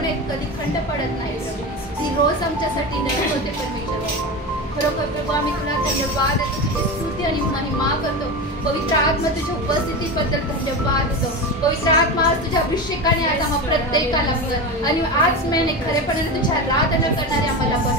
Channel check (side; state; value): both; normal; correlation 0.23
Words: कधी खंड पडत नाही प्रभू. ती रोज आमच्यासाठी नवीन होते परमेश्वर. खरोखर प्रभू आम्ही तुला धन्यवाद देतो, तुझी स्तुती आणि महिमा करतो. पवित्र आत्मा तुझ्या उपस्थितीबद्दल धन्यवाद देतो. पवित्र आत्मा आज तुझ्या अभिषेकाने आज आम्हा प्रत्येकाला आणि आज महिने खरेपणाने तुझी आराधना करणारे आम्हाला